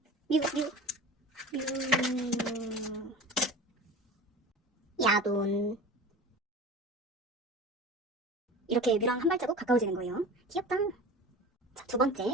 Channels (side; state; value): both; normal; correlation 0.36